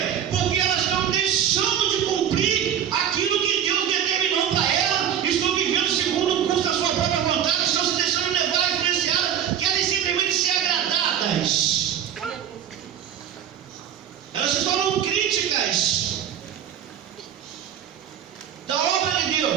Porque elas estão deixando de cumprir aquilo que Deus determinou para elas, estão vivendo segundo o curso da sua própria vontade, estão se deixando levar, influenciadas, querem simplesmente ser agradadas. Elas se tornam críticas da obra de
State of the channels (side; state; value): left; quieter; 9.4 dB